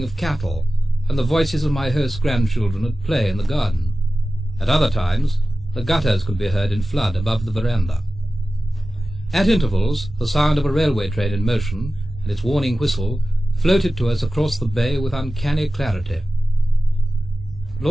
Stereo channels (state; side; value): normal; both; correlation 0.95